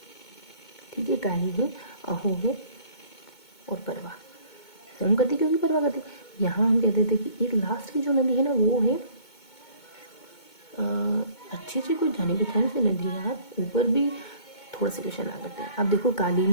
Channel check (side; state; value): right; late; 2.2 ms